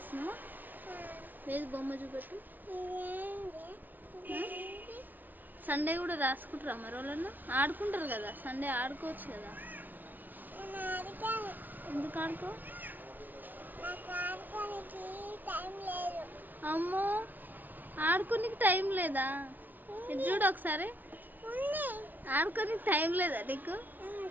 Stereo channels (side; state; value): left; late; 0.084 ms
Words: లేదు, బొమ్మ చూపెట్టు. సండే కూడా రాసుకుంటారా మరి వాళ్ళన్నా? ఆడుకుంటారు కదా సండే, ఆడుకోవచ్చు కదా. ఎందుకు ఆడుకో? అమ్మో, ఆడుకోనికి టైం లేదా? ఇది చూడు ఒకసారి. ఆడుకోనికి టైం లేదా నీకు?